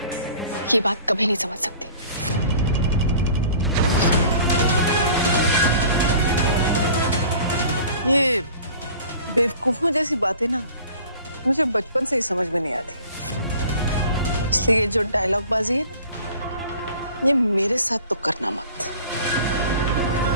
ये बात कभी नहीं समझ सकती। ये बेवकूफों जैसी बातें ना मुझे बचपन से ही समझ में नहीं आती। इसलिए ये जो डायलॉग बाजी है ना, ये मेरे साथ तो करना मत।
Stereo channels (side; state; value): both; inverted; correlation -0.47